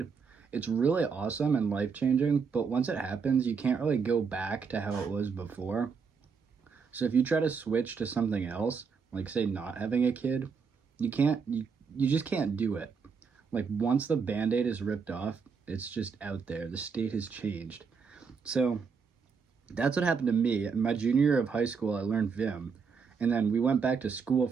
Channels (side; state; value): left; quieter; 5.7 dB